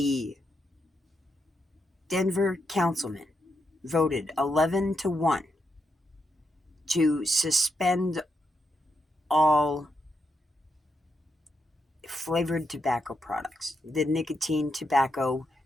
Denver councilman voted 11-1 to suspend all flavored tobacco products. The nicotine, tobacco,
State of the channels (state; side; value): normal; both; correlation 0.82